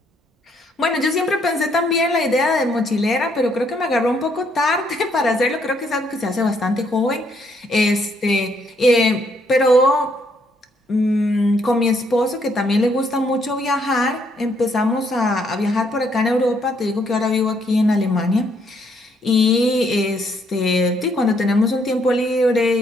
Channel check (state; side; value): normal; both; correlation 0.71